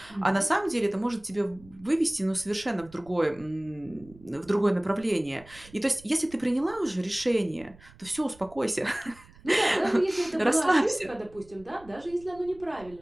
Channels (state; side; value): noise; right; rumble, 23 dB below the sound